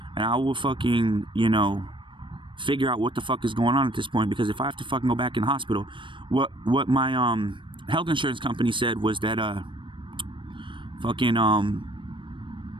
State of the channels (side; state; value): left; late; 0.24 ms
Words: and I will fucking, you know, figure out what the fuck is going on at this point. Because if I have to fucking go back in the hospital, what my health insurance company said was that